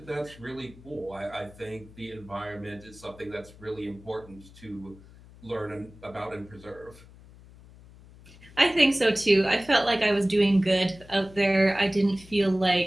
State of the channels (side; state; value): left; noise; hum, 22 dB below the sound